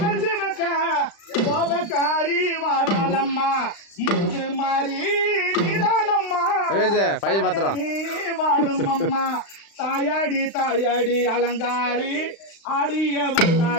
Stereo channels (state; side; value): late; right; 35 ms